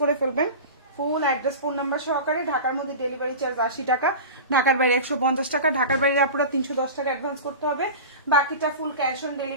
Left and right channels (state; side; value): inverted; both; correlation -0.31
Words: করে ফেলবেন ফুল অ্যাড্রেস ফোন নাম্বার সহকারে। ঢাকার মধ্যে ডেলিভারি চার্জ 80 টাকা, ঢাকার বাইরে 150 টাকা, ঢাকার বাইরে আপনারা 310 টাকা অ্যাডভান্স করতে হবে, বাকিটা ফুল ক্যাশ অন